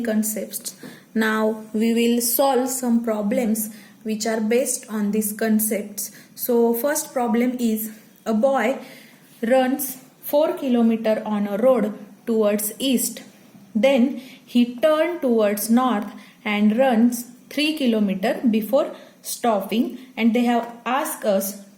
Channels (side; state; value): both; identical; correlation 1.00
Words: Now we will solve some problems which are based on these concepts. So first problem is a boy runs 4 kilometers on a road towards east. Then he turned towards north and runs 3 kilometers before stopping, and they have asked us